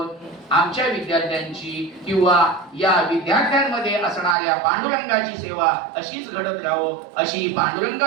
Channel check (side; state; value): left; drops out; at 4.4 s